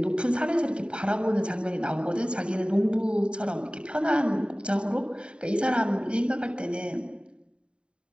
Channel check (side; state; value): left; late; 0.053 ms